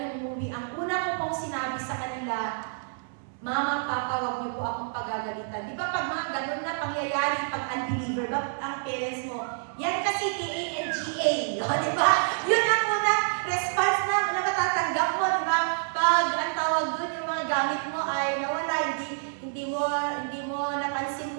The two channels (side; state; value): left; silent; 59 dB below the other